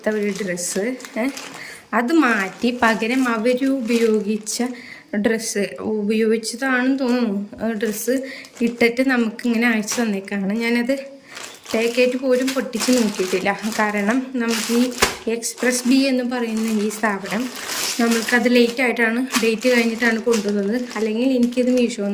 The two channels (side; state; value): both; identical; correlation 1.00